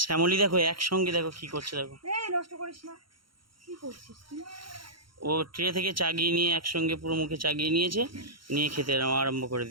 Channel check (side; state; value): left; late; 0.73 ms